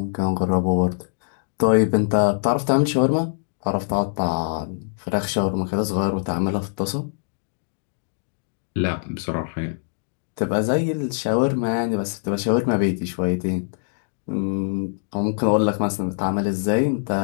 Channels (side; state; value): right; silent; digital silence